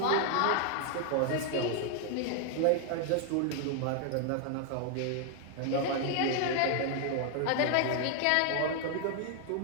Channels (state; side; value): different; both; correlation 0.00